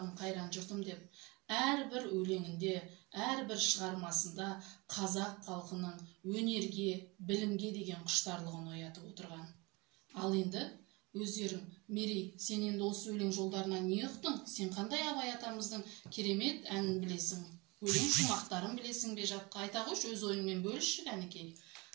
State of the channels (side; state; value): left; quieter; 25.9 dB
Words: қайран жұртым деп, әрбір өлеңінде, әрбір шығармасында қазақ халқының өнерге, білімге деген құштарлығын оятып отырған. Ал енді өздерің, Мерей, сен енді осы өлең жолдарынан не ұқтың? Сен қандай Абай атамыздың керемет әнін білесің? Өлең шумақтарын білесің бе жатқа? Айта қойшы, өз ойыңмен бөлішші кәнекей.